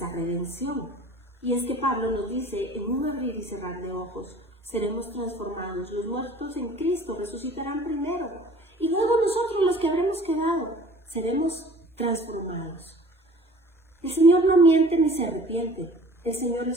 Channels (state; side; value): normal; both; correlation 0.47